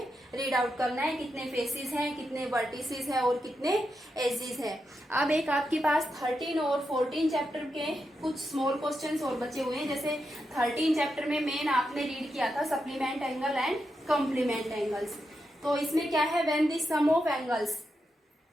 रीड आउट करना है, कितने फेसेस हैं, कितने वर्टिसेस हैं और कितने एजेस हैं। अब एक आपके पास 13 और 14 चैप्टर के कुछ स्मॉल क्वेश्चंस और बचे हुए हैं। जैसे 13 चैप्टर में मेन आपने रीड किया था supplement angle and complement angles. तो इसमें क्या है, when the sum of angles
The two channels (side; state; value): both; normal; correlation 0.86